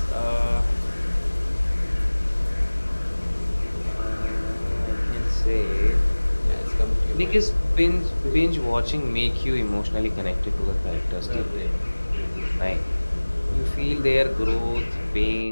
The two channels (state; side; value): inverted; both; correlation -1.00